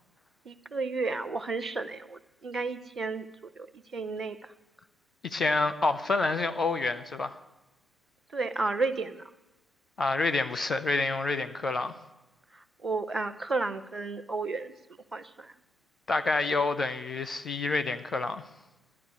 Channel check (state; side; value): normal; both; correlation 0.80